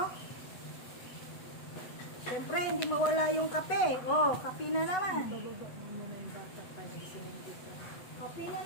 Siyempre, hindi mawala yung kape. Oh, kape na naman. Bababa mo muna yung bata pa nagsinindi ka. Kape na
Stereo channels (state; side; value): late; right; 8.1 ms